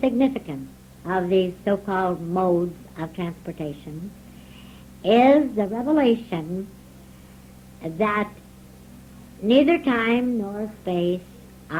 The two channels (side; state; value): both; identical; correlation 1.00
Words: significance of these so-called modes of transportation is the revelation that neither time nor space